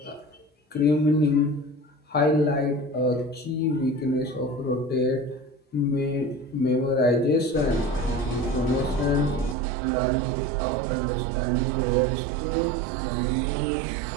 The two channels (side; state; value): left; drops out; at 9.6 s